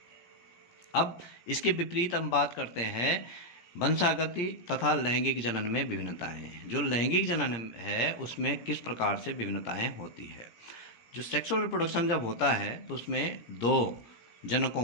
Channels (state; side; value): late; right; 17 ms